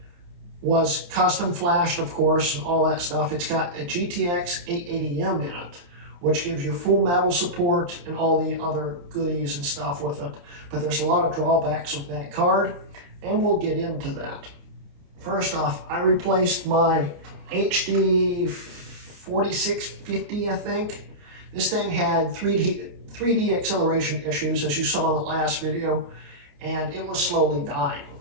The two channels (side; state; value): left; late; 29 ms